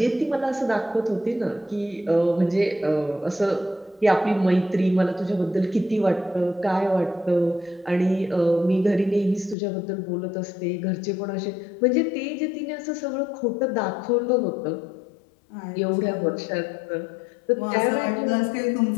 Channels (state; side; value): drops out; right; at 9.6 s